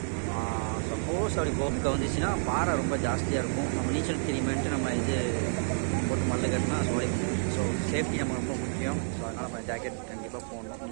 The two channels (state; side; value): silent; left; digital silence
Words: சப்போஸ் அப்படி போக்க வந்துச்சுன்னா பாறை ரொம்ப ஜாஸ்தியாக இருக்கும். நம்ம நீச்சல் தெரியுமேன்ட்டு நம்ம இது போட்டு மல்ல கட்டினா சோழி. ஸோ சேஃப்டி நம்ம ரொம்ப முக்கியம். ஸோ அதனால் நம்ம ஜாக்கெட் கண்டிப்பாக போடணும்.